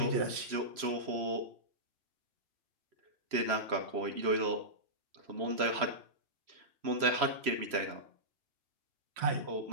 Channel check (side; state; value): left; late; 3.0 ms